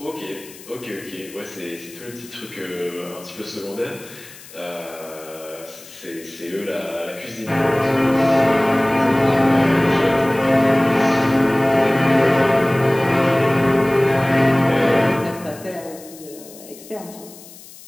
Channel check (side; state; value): left; noise; hiss, 19 dB below the sound